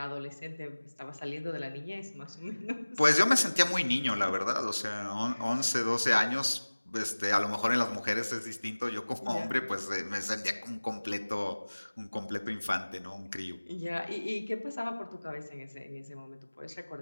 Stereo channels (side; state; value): both; inverted; correlation -1.00